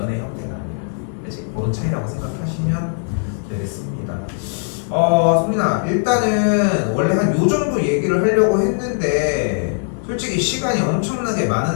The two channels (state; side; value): silent; right; 66 dB below the other